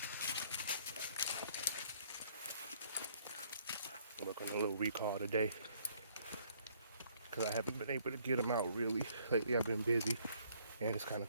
Work on a little recall today because I haven't been able to get them out really. Lately I've been busy and it's kind of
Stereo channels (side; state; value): both; inverted; correlation -0.63